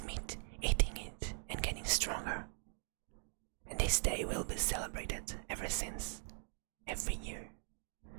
meat, eating it and getting stronger. And this day will be celebrated ever since, every year.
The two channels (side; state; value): left; silent; 50 dB below the other